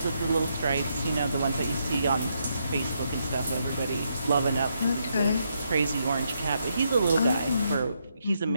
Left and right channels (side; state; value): both; inverted; correlation -0.79